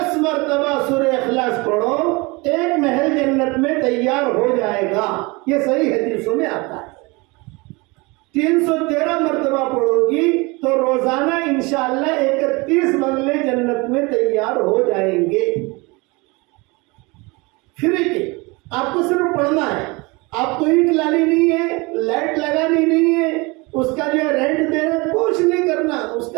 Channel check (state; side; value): quieter; left; 25.8 dB